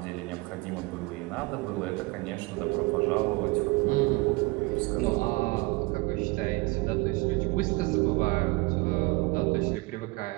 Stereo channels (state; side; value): quieter; left; 24.6 dB